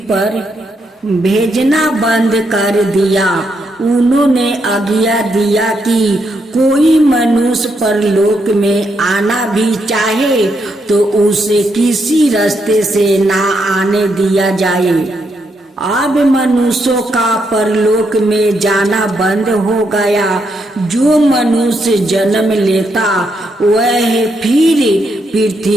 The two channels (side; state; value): both; normal; correlation 0.79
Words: पर भेजना बंद कर दिया। उन्होंने आज्ञा दिया कि कोई मनुष्य परलोक में आना भी चाहे तो उसे किसी रास्ते से ना आने दिया जाए। अब मनुष्यों का परलोक में जाना बंद हो गया। जो मनुष्य जन्म लेता वह फिर